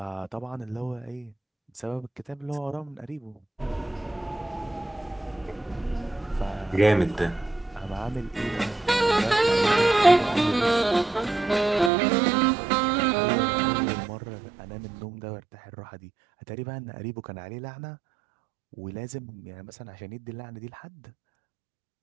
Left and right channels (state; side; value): drops out; left; at 11.9 s